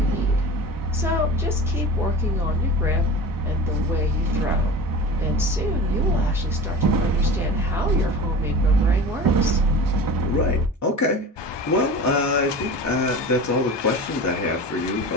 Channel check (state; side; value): normal; both; correlation 0.35